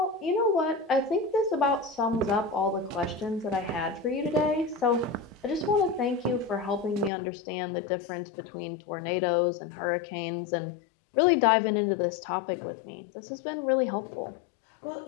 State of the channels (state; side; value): drops out; right; at 7.1 s